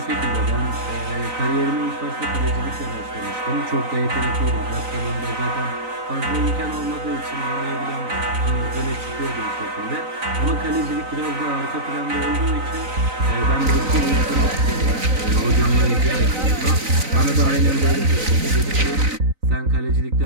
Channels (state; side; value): late; left; 3.9 ms